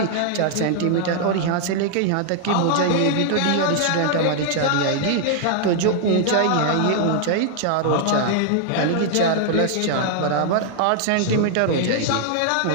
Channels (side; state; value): both; different; correlation 0.00